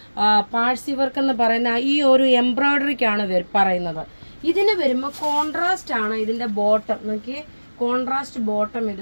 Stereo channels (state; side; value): inverted; both; correlation -1.00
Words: പാഴ്സി വർക്ക് എന്ന് പറയുന്ന ഈ ഒരു എംബ്രോയിഡറിക്കാണ് പറയുന്നത്. ഇതിന് വരുമ്പോൾ കോൺട്രാസ്റ്റ് ആണ് ഇതിന്റെ ബോട്ടം. നോക്കി കോൺട്രാസ്റ്റ് ബോട്ടം